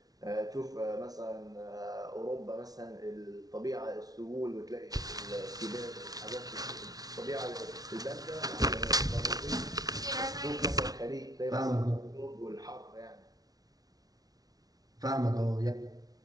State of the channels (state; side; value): late; left; 0.18 ms